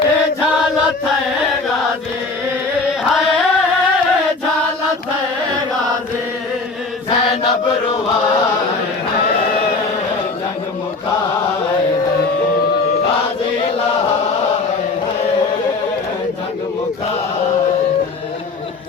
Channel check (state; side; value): quieter; right; 3.8 dB